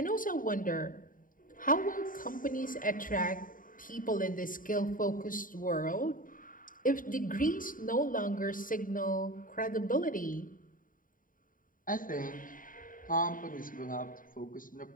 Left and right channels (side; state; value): right; late; 0.40 ms